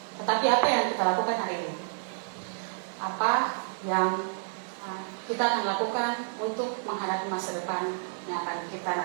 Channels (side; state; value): left; silent; 58 dB below the other